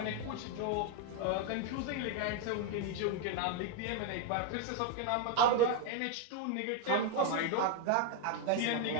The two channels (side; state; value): both; different; correlation 0.01